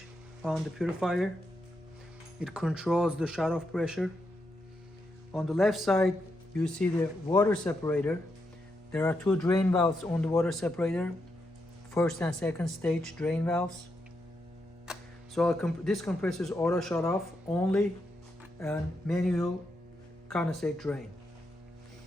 on the purifier. It controls the shut-off pressure. On the left side you see the water separator. There are two drain valves on the water separator, first and second stage drain valves. So this compressor is auto shut off only and manual condensate drain.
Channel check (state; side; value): normal; both; correlation 0.83